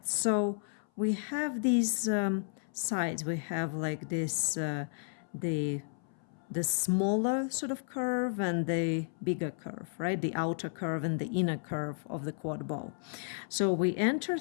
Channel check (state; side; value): silent; right; 56 dB below the other